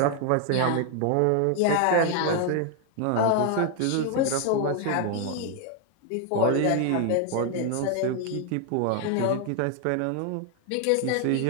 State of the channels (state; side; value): different; both; correlation 0.00